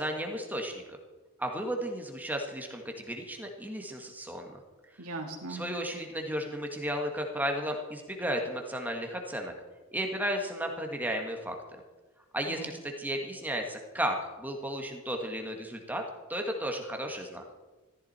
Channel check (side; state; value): both; normal; correlation 0.46